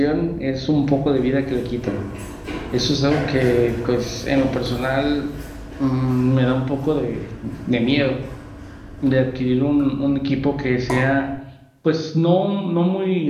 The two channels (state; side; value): identical; both; correlation 1.00